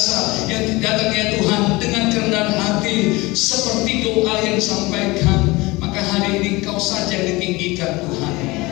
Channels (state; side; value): quieter; right; 22.3 dB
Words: yang datang ya Tuhan dengan kerendahan hati seperti doa yang disampaikan. Maka hari ini Kau saja yang ditinggikan Tuhan.